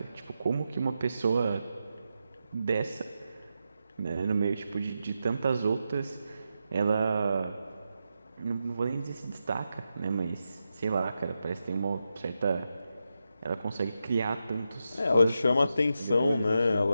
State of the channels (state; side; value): inverted; both; correlation -0.88